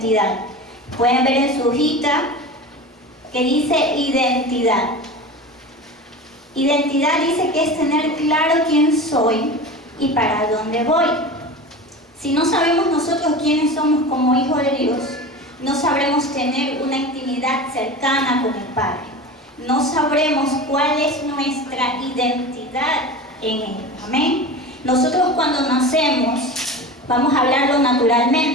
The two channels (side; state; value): both; normal; correlation 0.31